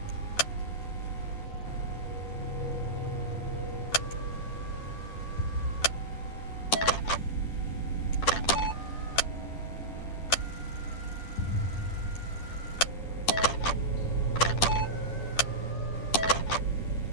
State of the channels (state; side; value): late; right; 10 ms